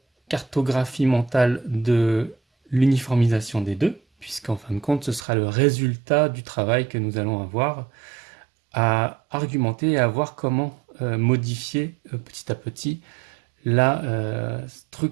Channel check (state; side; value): drops out; left; at 5.2 s